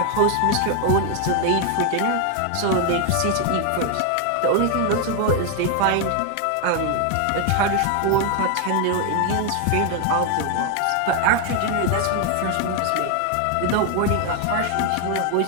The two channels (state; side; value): different; both; correlation 0.01